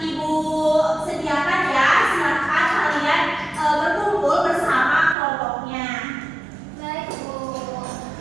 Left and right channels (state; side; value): drops out; left; at 5.2 s